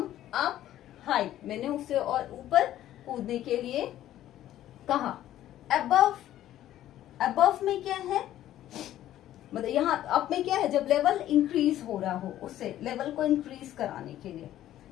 up high, मैंने उसे और ऊपर कूदने के लिए कहा। अबव, अबव में क्या है, मतलब यहाँ अप में क्या है, जब लेवल इंक्रीज हो रहा हो, उससे लेवल को इंक्रीज कराने के लिए।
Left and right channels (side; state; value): right; quieter; 12.8 dB